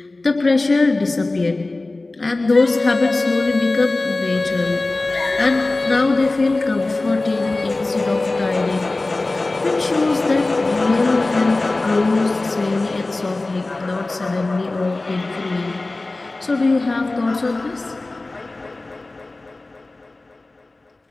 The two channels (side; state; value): right; quieter; 3.1 dB